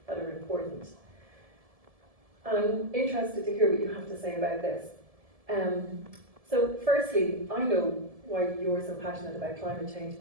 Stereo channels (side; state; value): left; late; 1.7 ms